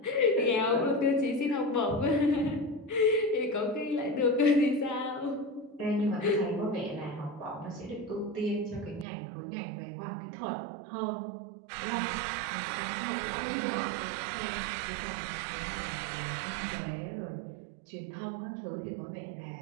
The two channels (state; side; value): drops out; left; at 9.1 s